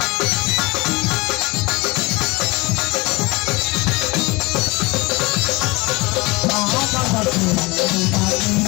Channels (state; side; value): quieter; right; 24.1 dB